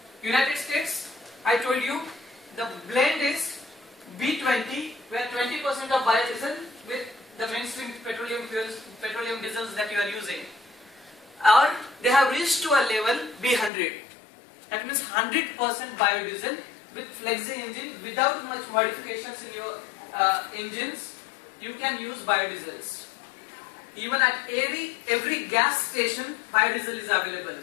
United States, I told you, the blend is B20, where 20% of biodiesel with the mainstream petroleum fuels, petroleum diesels that you are using. Or they have reached to a level B100. That means 100% biodiesel with flexi engine, without much modifications in your engines, you can use biodiesels. Even at every gas station, biodiesel is available.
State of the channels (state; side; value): drops out; right; at 13.7 s